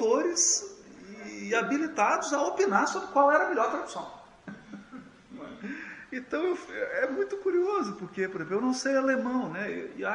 e habilitados a opinar sobre qual era a melhor tradução. Então é muito curioso, porque, por exemplo, eu não sei alemão, né? E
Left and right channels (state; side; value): identical; both; correlation 1.00